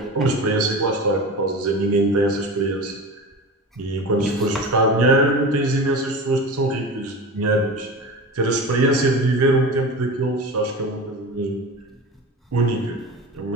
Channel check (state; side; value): normal; both; correlation 0.30